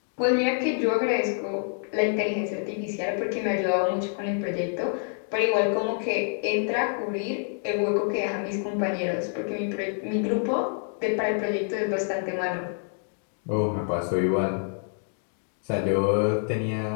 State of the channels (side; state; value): right; silent; 56 dB below the other